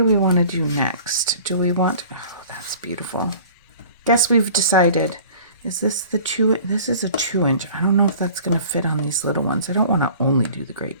we want to do next? Do we want... Oh, that's beautiful. Guess we've decided... Is this the 2? This is a 2-inch. I don't know if that's going to fit on these little ones. I don't want to only do the great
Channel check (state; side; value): inverted; both; correlation -0.46